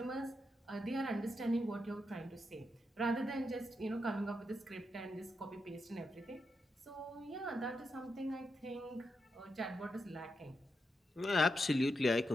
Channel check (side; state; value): both; normal; correlation 0.84